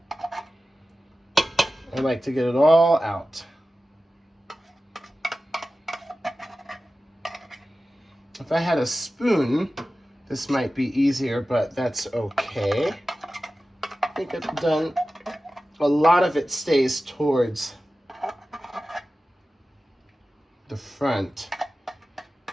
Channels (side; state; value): both; normal; correlation 0.95